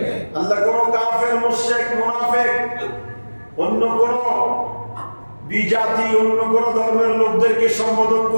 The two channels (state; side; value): inverted; both; correlation -1.00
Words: আল্লাহ কোন কাফের, মুশরিক, মুনাফিক, অন্য কোন বিজাতি, অন্য কোন ধর্মের লোকদেরকে সম্বোধন